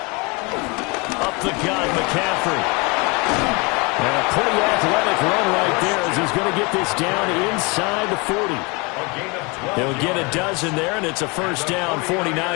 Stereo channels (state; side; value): quieter; right; 28.5 dB